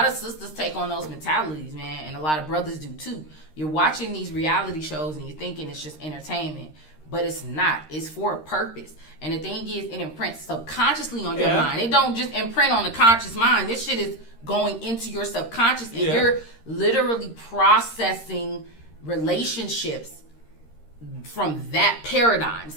of sisters take on those mentalities, man, and a lot of brothers do too. You're watching these reality shows and you're thinking it's just entertainment. But it's not. It's for a purpose. And the thing is, it imprints subconsciously on your mind. It don't just imprint on the conscious mind. This shit is going into your subconscious, and you're literally processing relationships from that paradigm.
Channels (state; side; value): late; right; 13 ms